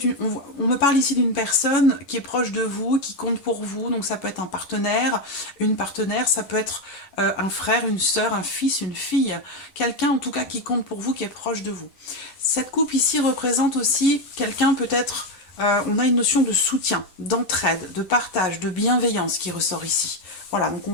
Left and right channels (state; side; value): late; right; 11 ms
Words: on me parle ici d'une personne qui est proche de vous, qui compte pour vous. Donc ça peut être un partenaire, une partenaire, ça peut être un frère, une sœur, un fils, une fille. Quelqu'un en tout cas qui compte pour vous, qui est proche de vous. Cette coupe ici représente aussi quelqu'un peut-être, on a une notion de soutien, d'entraide, de partage, de bienveillance qui ressort ici. Voilà, donc on